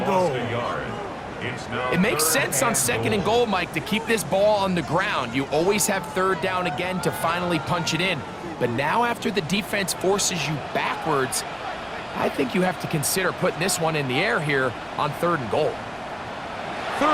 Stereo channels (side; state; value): both; identical; correlation 1.00